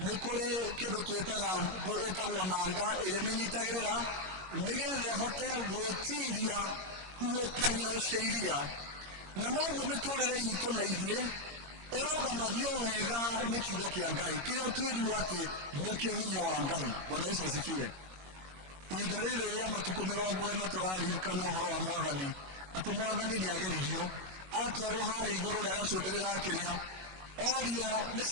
kuri kindu twitaga etagwo nanga imenyitagirira nigethe hote gwitiria uokanio ciiria na noguo miturire itu na ithuĩ irogamagio wega ni kiugo kia Ngai kiria twirirwo ati nikio hinya wa Ngai. Bwana Yesu asifiwe. Ihinda rĩrĩ rĩa matuko 40 turaririkana ũhoro wa mwathani ati mwathani ni ageririo atwarwo harĩ igũrũ rĩa gacumbĩrĩ ga kĩrĩa orio nĩ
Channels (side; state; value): left; late; 21 ms